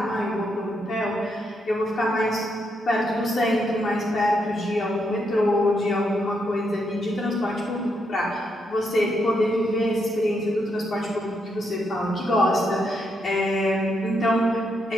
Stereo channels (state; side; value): normal; both; correlation 0.79